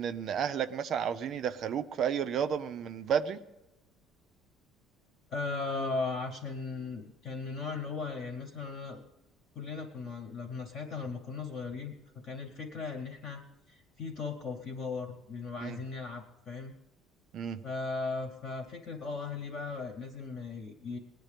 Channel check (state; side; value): normal; both; correlation 0.50